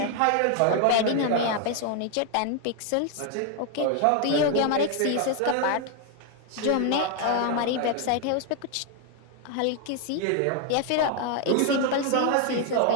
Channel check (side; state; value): both; different; correlation 0.01